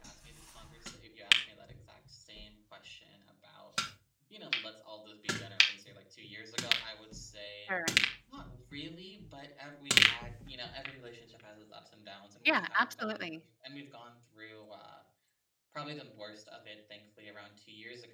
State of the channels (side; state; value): both; identical; correlation 1.00